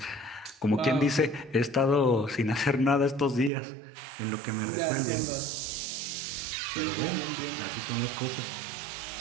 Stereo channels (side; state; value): left; drops out; at 3.5 s